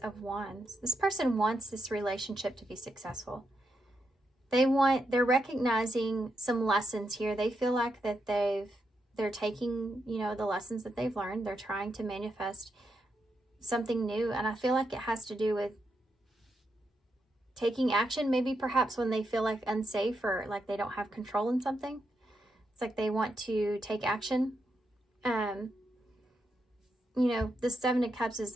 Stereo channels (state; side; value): normal; both; correlation 0.83